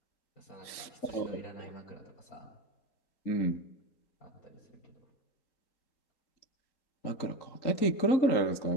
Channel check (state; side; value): late; right; 3.9 ms